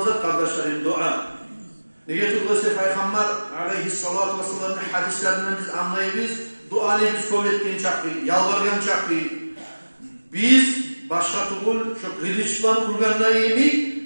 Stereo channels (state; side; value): inverted; both; correlation -1.00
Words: kardeşlerim dua. Neye tutulursa Peygamber aleyhissalatu vesselam'ın hadislerinden biz anlayırız. Duanı biz kabul ettiğin çaktı, yalvargan çaktı. Biz başka tukul, şu kılıçlan